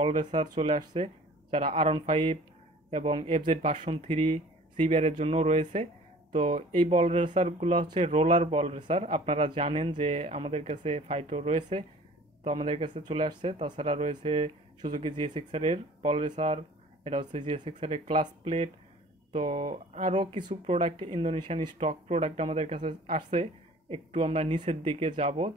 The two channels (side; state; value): both; normal; correlation 0.48